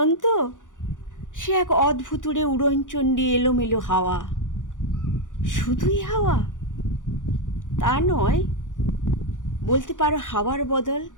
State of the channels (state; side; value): late; right; 0.87 ms